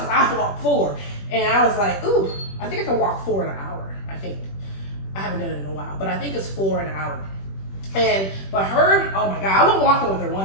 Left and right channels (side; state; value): right; late; 21 ms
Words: I walked 4. And I was like, ooh, I think I can walk 4 in an hour, I think. I haven't done it in a while, but I think it's 4 in an hour. But her, oh my God, I went walking with her